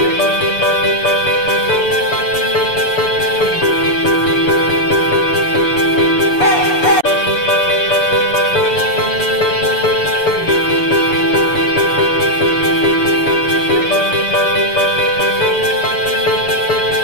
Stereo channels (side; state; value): right; late; 6.9 ms